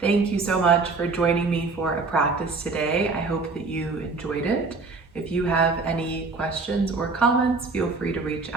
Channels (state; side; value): quieter; left; 4.0 dB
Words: you so much for joining me for a practice today. I hope that you enjoyed it. If you have any questions or comments, feel free to reach